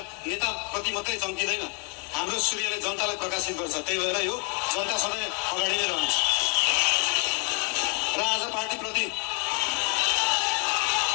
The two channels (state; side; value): quieter; right; 35.0 dB